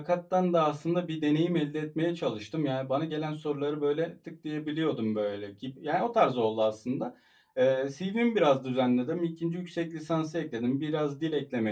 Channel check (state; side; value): identical; both; correlation 1.00